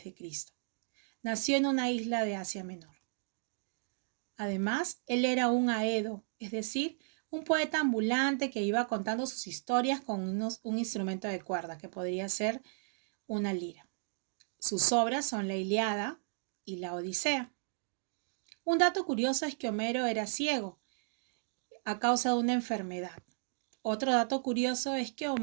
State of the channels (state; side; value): silent; left; digital silence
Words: Nació en una isla de Asia Menor. Además, él era un aedo, es decir, un poeta ambulante que iba contando sus historias con un instrumento de cuerda, que podría ser una lira. Sus obras son la Ilíada y la Odisea. Un dato curioso es que Homero era ciego a causa de una enfermedad. Otro dato curioso es que